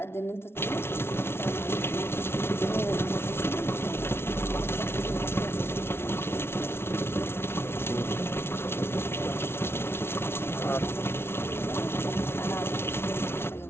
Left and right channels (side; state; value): right; late; 0.12 ms